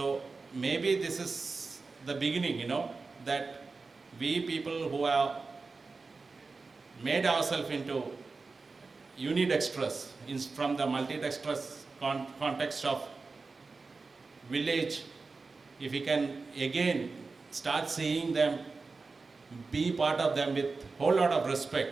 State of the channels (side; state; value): left; quieter; 4.1 dB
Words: maybe this is the beginning, that we people who have made ourselves into unidextrous from the multidextrous context of village, if we can again start seeing them, be part of them with a whole lot of